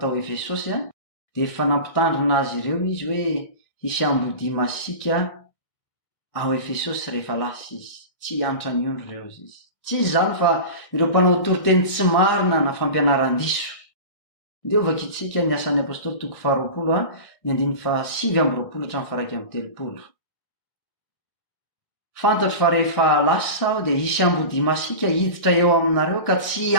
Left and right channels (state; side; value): late; right; 1.6 ms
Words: Efesosy de efa nampitandrina azy ireo izy hoe hisy ambody masika ao Efesosy rehefa lasa izy, tsy hiantra ny ondro ireo izy. Tsy izy zany fa ireo mpanao toriteny tsy marina na fampianaran-diso. Ndeo vakitsika ny asan'ny apôstôly 2:7-9:1-20. Fantatro fa rehefa lasa aho de hisy ambody masika hiditra eo aminareo ka tsy